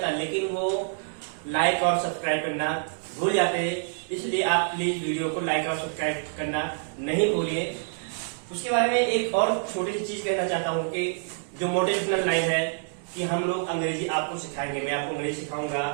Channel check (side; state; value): left; silent; digital silence